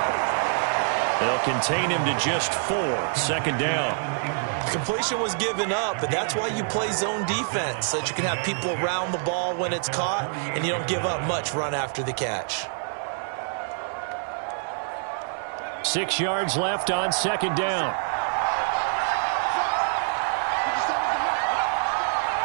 They'll contain him to just 4. 2nd down. Completion was given up, but that's why you play zone defense, so that you can have people around the ball when it's caught, and you don't give up much run after the catch. 6 yards left on 2nd down.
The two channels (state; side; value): silent; left; 61 dB below the other